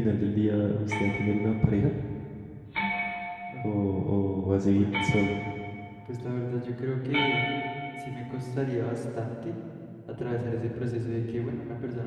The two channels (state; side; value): identical; both; correlation 1.00